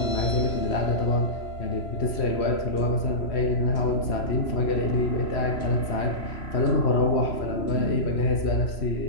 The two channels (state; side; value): late; right; 3.0 ms